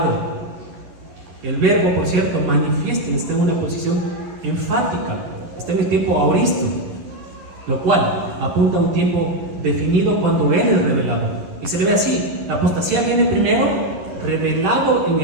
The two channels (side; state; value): left; late; 11 ms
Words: El verbo, por cierto, manifiesta, está en una posición enfática, está en el tiempo aoristo, lo cual apunta a un tiempo definido cuando Él es revelado. Y se le ve así: la apostasía viene primero revelado en